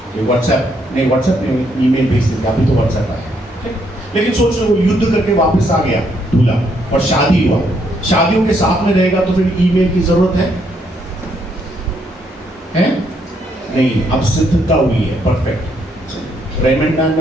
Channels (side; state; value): both; normal; correlation 0.73